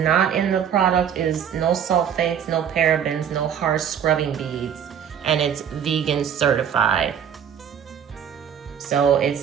in the product is no sulfates, no parabens, no harsh scrubbing beads, and it's vegan certified. So it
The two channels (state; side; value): quieter; left; 8.6 dB